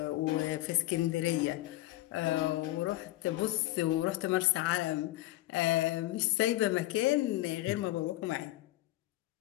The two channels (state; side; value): quieter; right; 17.2 dB